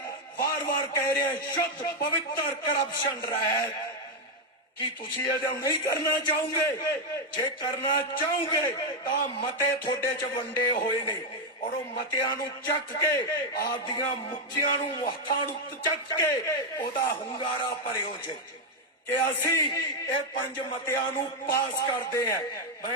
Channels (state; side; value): normal; both; correlation 0.02